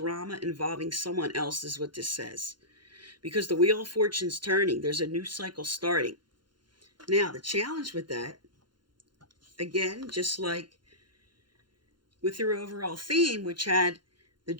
involving someone else is what this says. Because the Wheel of Fortune's turning, there's a new cycle starting. Now, the challenge with that, again, just like with your overall theme, which had the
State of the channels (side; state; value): left; late; 0.71 ms